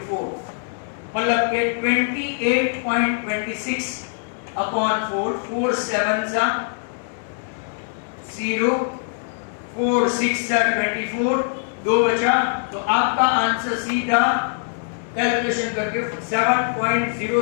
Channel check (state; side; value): silent; right; 64 dB below the other